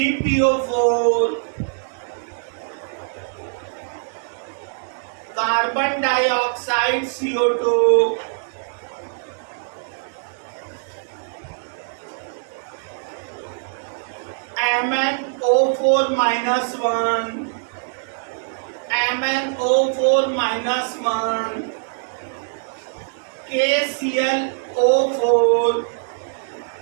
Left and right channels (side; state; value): left; silent; digital silence